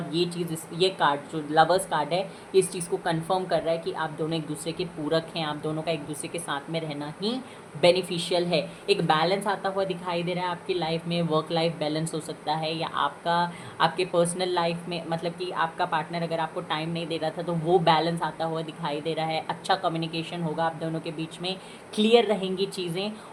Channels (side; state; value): both; identical; correlation 1.00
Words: ये चीज़, ये कार्ड जो लवर्स कार्ड है, ये इस चीज़ को कंफर्म कर रहा है कि आप दोनों एक दूसरे के पूरक हैं, आप दोनों का एक दूसरे के साथ में रहना ही बेनिफिशियल है। एक बैलेंस आता हुआ दिखाई दे रहा है आपकी लाइफ में, वर्क लाइफ बैलेंस हो सकता है, या आपके पर्सनल लाइफ में, मतलब कि आपका पार्टनर अगर आपको टाइम नहीं दे रहा था तो वो बैलेंस आता हुआ दिखाई दे रहा है। अच्छा कम्युनिकेशन होगा आप दोनों के बीच में, क्लियर रहेंगी चीज़ें,